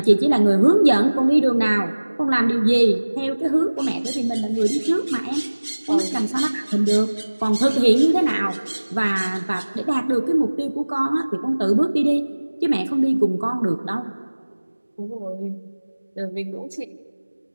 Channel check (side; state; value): both; inverted; correlation -1.00